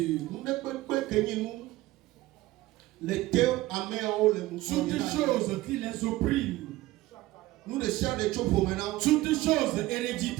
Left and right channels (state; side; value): quieter; left; 17.6 dB